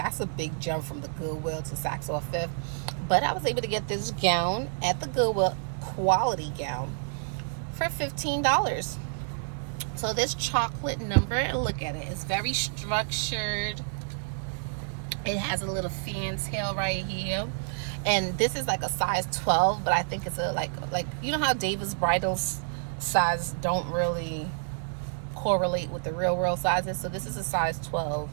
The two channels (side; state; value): left; silent; digital silence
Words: a big jump from the Goodwill to Saks or Fifth. But I was able to get this gown at the Goodwill, quality gown, for $15. So this chocolate number, and look at it, it's very structured. It has a little fantail right here. And this is like a size 12, but I think it's a like you know how David's bridals size don't really correlate with the real world sizes. So this is a size 12,